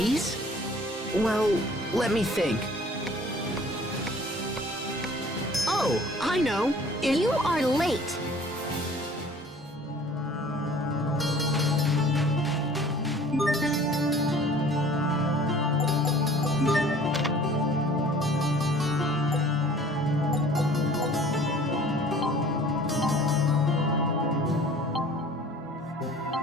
Well, let me think. Oh, I know. You are late.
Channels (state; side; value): normal; both; correlation 0.50